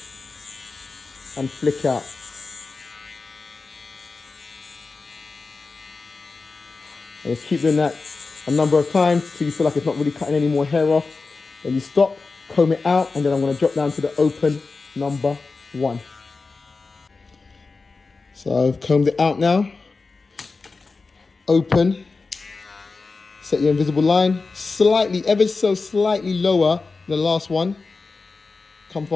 and flick out. And just keep doing that a number of times till you feel like it's not really cutting any more hair off. Then you stop, comb it out, and then I'm going to drop down to the open number 1. So I've combed it out now. Open. Set your invisible line slightly, ever so slightly lower than the last one. Come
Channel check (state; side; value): quieter; right; 4.1 dB